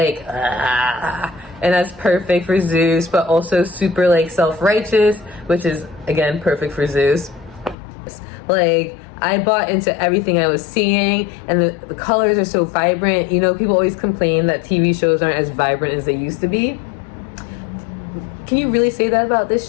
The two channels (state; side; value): drops out; right; at 7.8 s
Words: and that's perfect for Zeus, but also super like self-righteous, which is again perfect for Zeus. Like, I bought into everything I was seeing, and the colors are so vibrant. You know, people always complain that TV shows aren't as vibrant as they used to be. Can you really say that about this